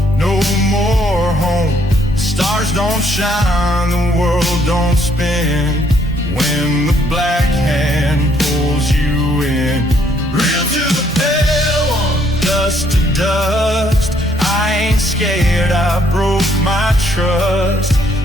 no more home. Stars don't shine, the world don't spin when the black hand pulls you in. Kneel to the pale on dust to dust. I ain't scared, I broke my trust.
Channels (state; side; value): normal; both; correlation 0.68